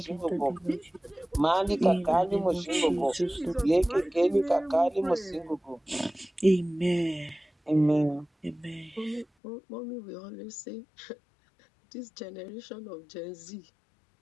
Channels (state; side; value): drops out; right; at 9.2 s